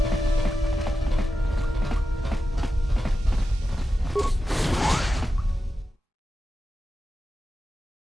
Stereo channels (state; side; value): normal; both; correlation 0.91